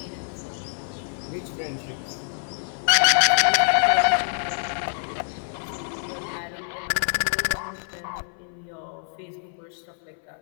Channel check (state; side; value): silent; right; 58 dB below the other